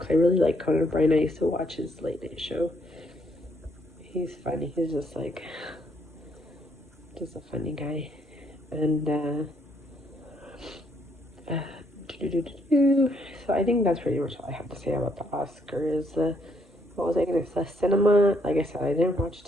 I really like Conan O'Brien. I used to watch his late night show. He's funny. He's just a funny guy. And so I think that's pretty much all I have to say about the Oscars. What was I gonna say? Cinema. Like I said, I didn't watch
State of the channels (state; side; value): normal; both; correlation 0.71